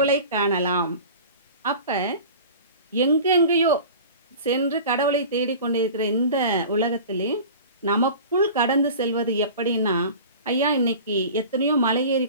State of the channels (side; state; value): both; inverted; correlation -0.38